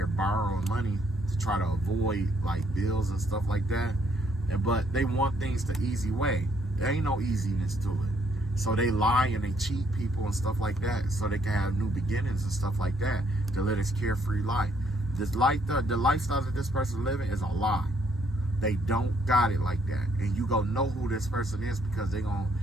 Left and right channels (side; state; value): both; normal; correlation 0.69